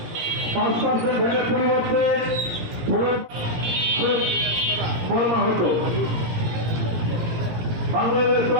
5% ভ্যাটের পরিবর্তে ফরমা হতো। বাংলাদেশ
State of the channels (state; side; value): late; left; 17 ms